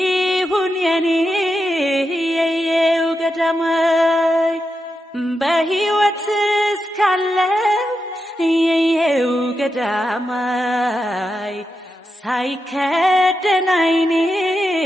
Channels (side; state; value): both; normal; correlation 0.87